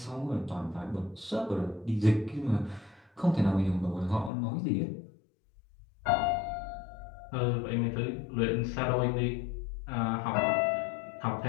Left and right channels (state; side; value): drops out; right; at 4.3 s